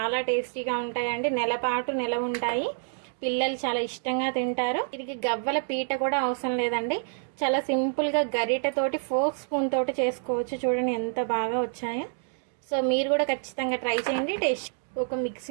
టేస్టీగా ఉంటాయండి. నెల ఉంటాయి. పిల్లలు చాలా ఇష్టంగా తింటారు. దీనికి గవ్వల పీట కూడా అవసరం లేదండి. చాలా సింపుల్గా గరిటెతోటి ఫోర్క్ స్పూన్ తోటి చేసుకోవచ్చు. చూడండి ఎంత బాగా వచ్చాయో. సో మీరు కూడా ఖచ్చితంగా ట్రై చేయండి. టేస్ట్ ఒక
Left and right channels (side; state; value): left; silent; digital silence